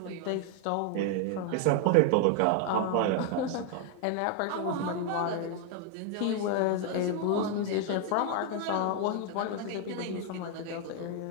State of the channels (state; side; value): different; both; correlation 0.01